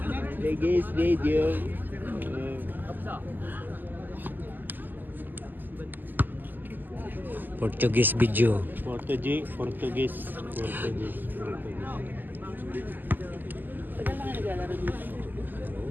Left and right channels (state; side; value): late; left; 0.088 ms